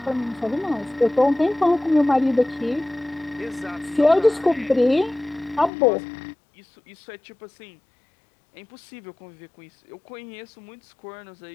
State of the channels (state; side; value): drops out; right; at 5.7 s